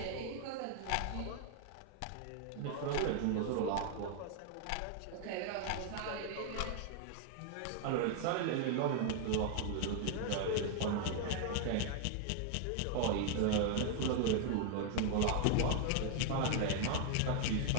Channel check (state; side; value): different; both; correlation 0.00